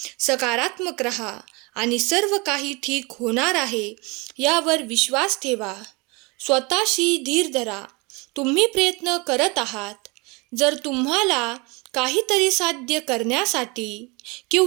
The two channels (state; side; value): quieter; left; 27.4 dB